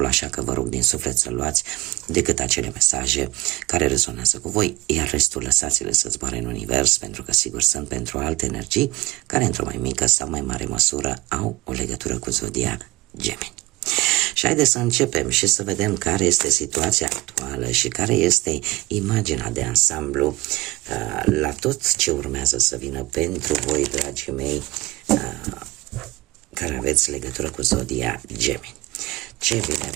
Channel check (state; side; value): quieter; left; 20.6 dB